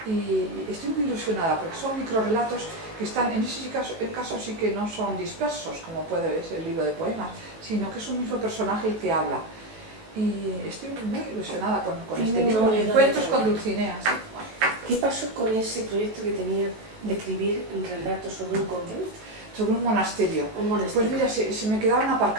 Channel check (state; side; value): late; left; 18 ms